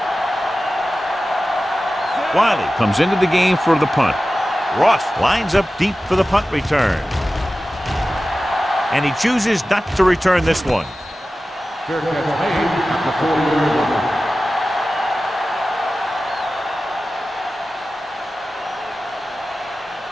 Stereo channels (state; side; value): normal; both; correlation 0.95